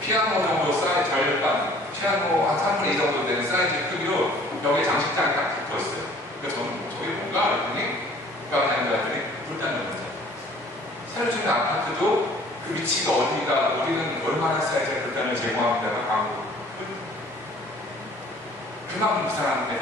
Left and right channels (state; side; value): normal; both; correlation 0.53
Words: 정도 사이즈 절반, 피아노 한 3분의 2 정도 되는 사이즈 크기로 벽에 장식장이 딱 붙어 있어요. 그래서 저는 저게 뭔가 그랬더니 그랬더니 불단 놓는 자리. 새로 짓는 아파트도 그 위치가 어디가 우리는 얼마나 사이즈의 불단을 제공합니다가 광고. 그만큼 부산하는 데